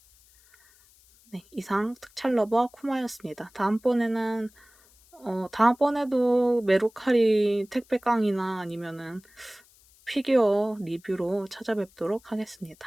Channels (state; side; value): noise; left; hiss, 29 dB below the sound